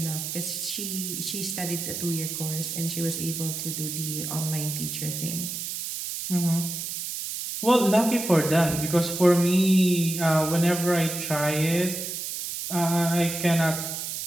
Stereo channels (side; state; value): right; noise; hiss, 5 dB below the sound